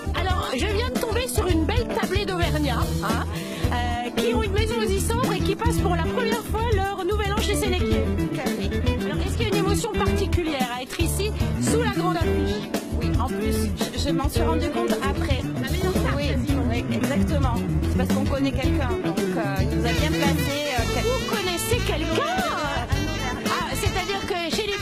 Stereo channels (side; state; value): both; identical; correlation 1.00